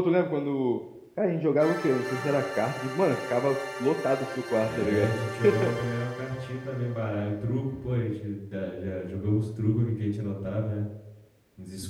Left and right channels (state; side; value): identical; both; correlation 1.00